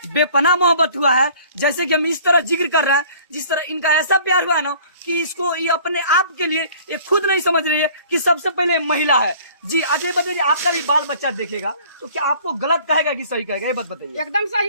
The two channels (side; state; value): both; inverted; correlation -0.51